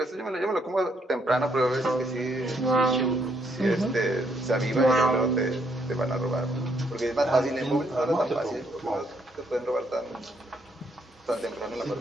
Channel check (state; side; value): normal; both; correlation 0.72